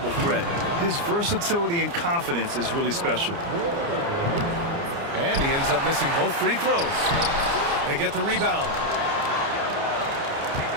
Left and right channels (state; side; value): late; left; 29 ms